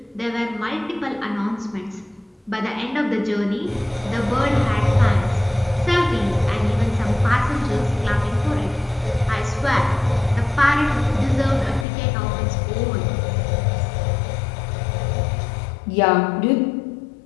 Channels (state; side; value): drops out; right; at 11.9 s